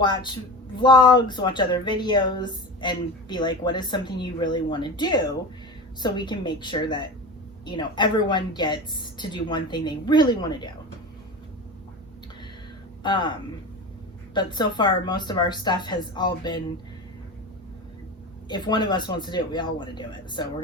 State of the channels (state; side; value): normal; both; correlation 0.29